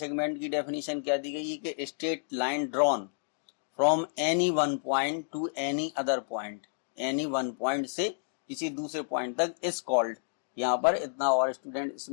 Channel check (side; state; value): right; silent; digital silence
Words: की डेफिनेशन क्या दी गई है कि straight line drawn from any one point two any other point, any one point से किसी दूसरे पॉइंट तक इज कॉल्ड। यहाँ पर इतना और स्टूडेंट